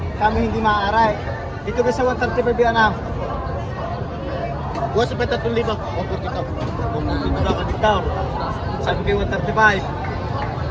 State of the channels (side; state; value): both; identical; correlation 1.00